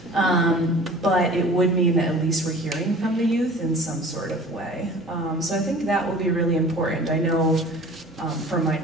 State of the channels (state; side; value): normal; both; correlation 0.44